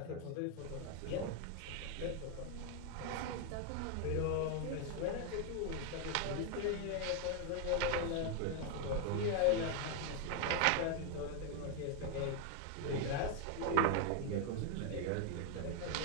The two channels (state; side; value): different; both; correlation 0.01